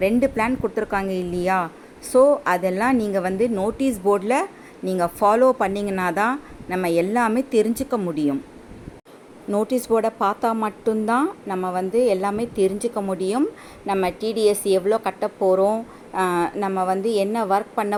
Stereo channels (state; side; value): identical; both; correlation 1.00